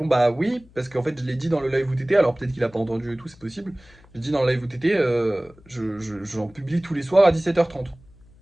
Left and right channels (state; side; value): noise; left; hum, 26 dB below the sound